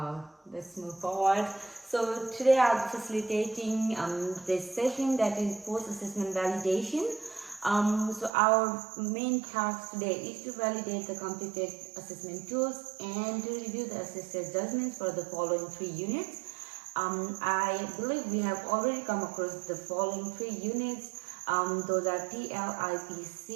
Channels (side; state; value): left; drops out; at 8.3 s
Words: Let's move forward. So today I'll be facilitating this session that is post-assessment validation. So our main task today is to validate the completed assessment tools and to review the assessor judgments for the following 3 units. I believe we have already come across the following 3 units. Those are